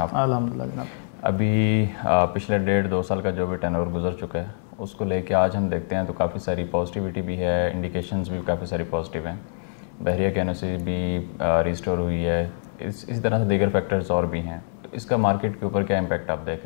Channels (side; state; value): right; silent; 60 dB below the other